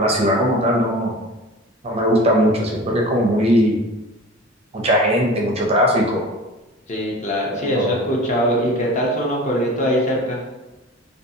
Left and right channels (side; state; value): both; normal; correlation 0.38